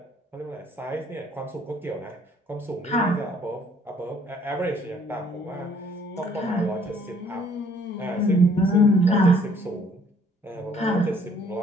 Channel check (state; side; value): normal; both; correlation 0.61